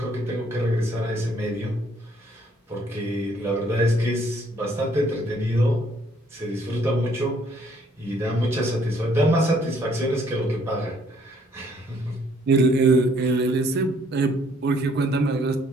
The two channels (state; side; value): normal; both; correlation 0.64